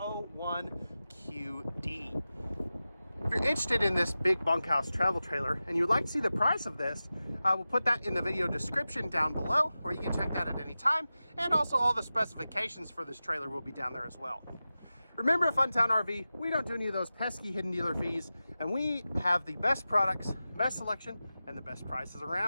QD. If you're interested in this big bunkhouse travel trailer and you'd like to see the price of this, I will put that in the video description down below, where you can check that at any time. And also all the specifications for this trailer will be down there as well. Remember, at Funtown RV, we don't do any of those pesky hidden dealer fees, and we have the best products, best selection, and the best prices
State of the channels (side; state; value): both; inverted; correlation -0.94